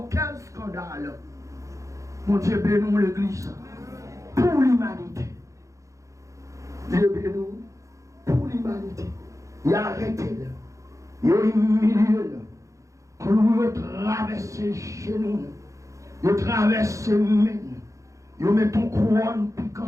quel scandale. Mon Dieu, bénis l'Église pour l'humanité. Dieu bénis pour l'humanité. Il a arrêté là. Il a humilié là. Quand nous traversons les genoux, il traverse les mains, il met ton couronne piquant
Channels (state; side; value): late; left; 0.15 ms